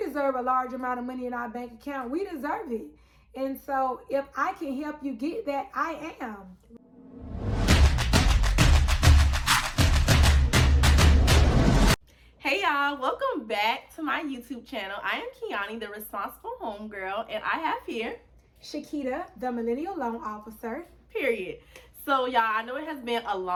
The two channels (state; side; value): identical; both; correlation 1.00